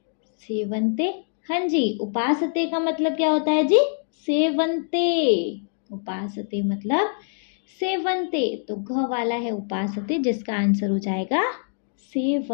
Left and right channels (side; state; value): right; silent; digital silence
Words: सेवन्ते, हाँ जी उपासते का मतलब क्या होता है जी, सेवन्ते, उपासते मतलब सेवन्ते, तो घ वाला है उपासते, जिसका आंसर हो जाएगा